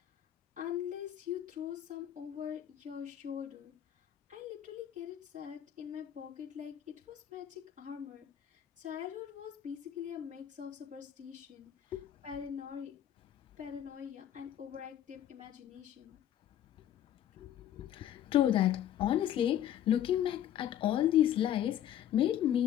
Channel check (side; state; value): right; quieter; 11.0 dB